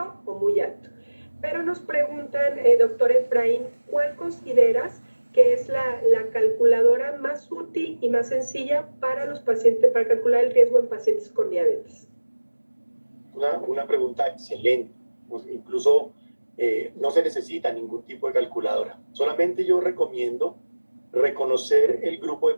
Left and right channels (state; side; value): inverted; both; correlation -1.00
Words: o muy alto. Pero nos preguntan, doctor Efraín, ¿cuál consideras que es la calculadora más útil y más sencilla para los pacientes, para calcular el riesgo en pacientes con diabetes? Una pregunta excelente. Pues incluso no se necesita ningún tipo de calculadora. Solamente yo recomiendo reconocer el grupo de